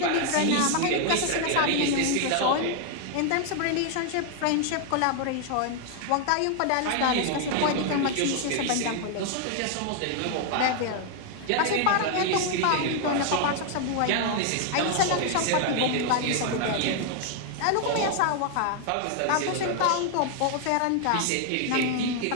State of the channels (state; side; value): different; both; correlation 0.00